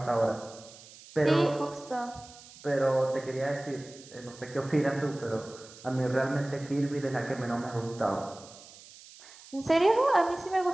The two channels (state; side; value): noise; right; hiss, 20 dB below the sound